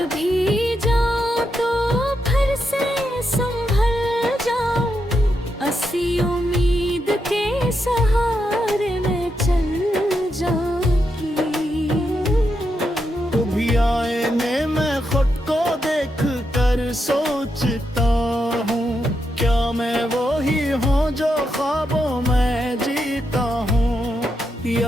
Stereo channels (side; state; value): both; normal; correlation 0.84